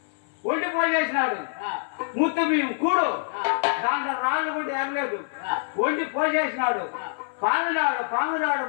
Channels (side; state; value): right; silent; 57 dB below the other